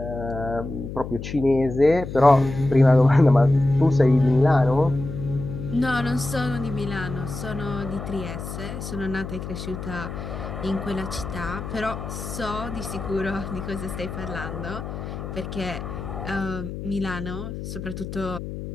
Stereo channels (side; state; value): left; noise; hum, 8 dB below the sound